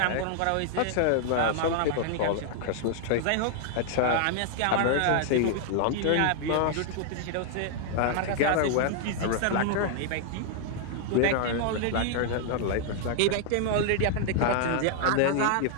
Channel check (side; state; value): both; different; correlation 0.00